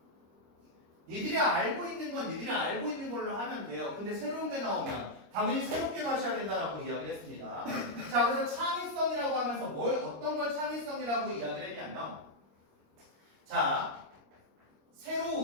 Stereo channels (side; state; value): left; late; 25 ms